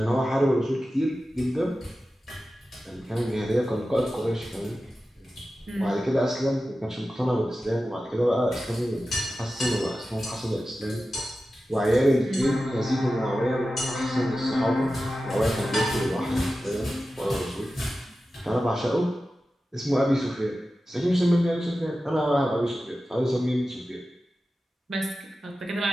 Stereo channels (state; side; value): normal; both; correlation 0.94